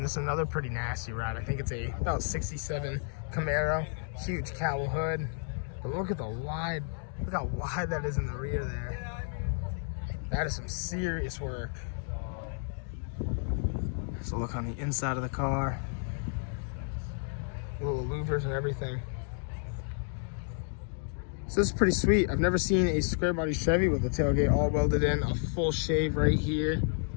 this is another pretty nasty ride. I think it's a about 67 Camaro. Huge cowl hood. But look at the wide, look how wide that is in the rear there. That is some serious work. So look on the inside of the car. Little louvers and everything. So this is pretty sweet. I've never seen a square body Chevy with a tailgate all welded in, a full shave right here.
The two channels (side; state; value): right; silent; 57 dB below the other